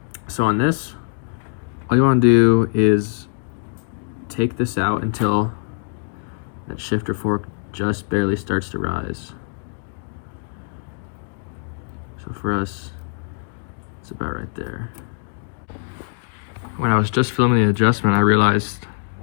So on this, all you wanna do is take this out until that shifter fork just barely starts to rise. So for us, it's about right there. When I was just filming the adjustment, I realized,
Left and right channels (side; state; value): right; silent; digital silence